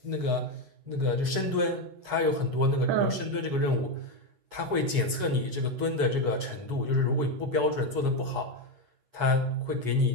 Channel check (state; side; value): late; left; 8.2 ms